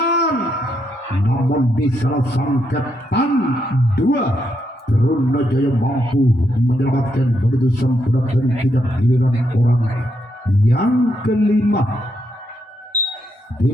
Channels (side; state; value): both; normal; correlation 0.79